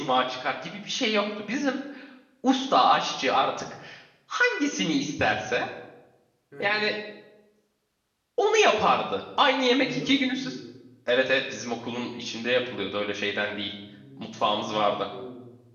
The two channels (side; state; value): both; identical; correlation 1.00